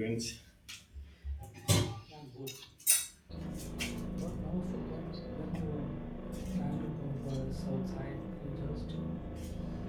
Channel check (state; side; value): identical; both; correlation 1.00